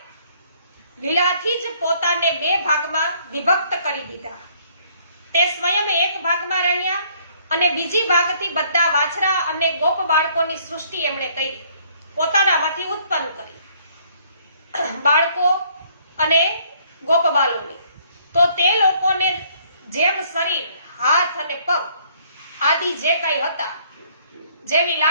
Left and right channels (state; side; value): inverted; both; correlation -0.63